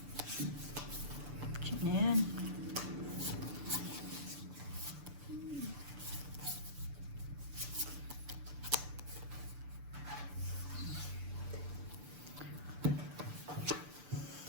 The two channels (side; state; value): left; late; 6.9 ms